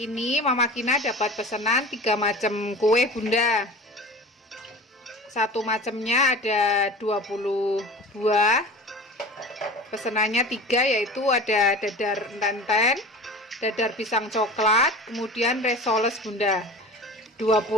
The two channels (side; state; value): both; normal; correlation 0.37